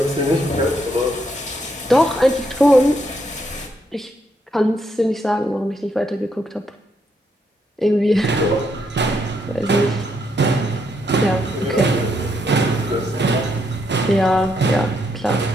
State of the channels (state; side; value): normal; both; correlation 0.76